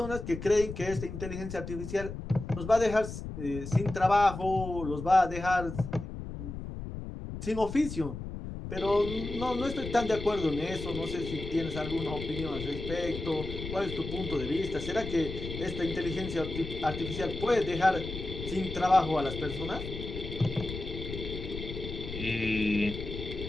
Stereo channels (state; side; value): noise; left; rumble, 8 dB below the sound